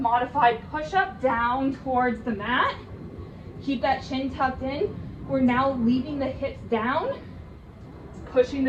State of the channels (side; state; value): both; identical; correlation 1.00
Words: push-up down towards the mat. Keep that chin tucked in. We're now leaving the hips down, pushing